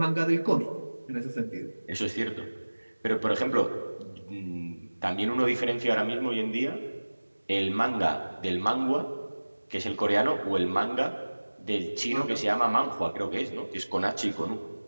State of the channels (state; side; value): inverted; both; correlation -1.00